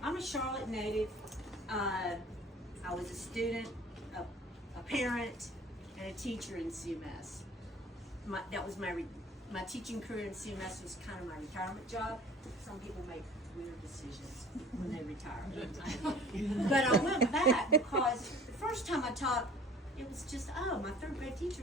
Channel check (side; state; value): both; normal; correlation 0.47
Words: I'm a Charlotte native. I was a student, a parent, and a teacher in CMS. That was my teaching career in CMS was kind of my retirement job. Some people make weird decisions when they retire. But I went back because the first time I taught, it was just, my third grade teacher